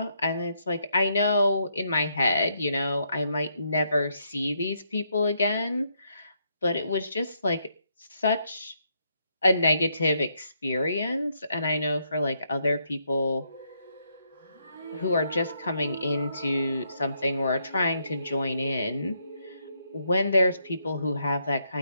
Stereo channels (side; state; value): both; inverted; correlation -0.76